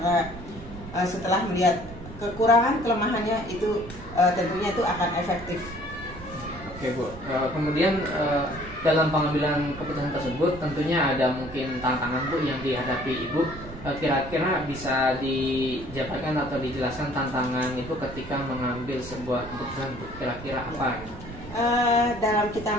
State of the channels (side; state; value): right; noise; rumble, 14 dB below the sound